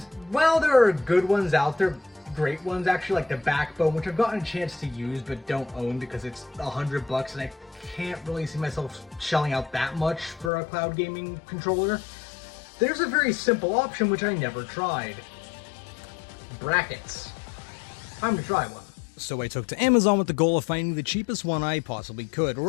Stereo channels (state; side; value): drops out; right; at 10.5 s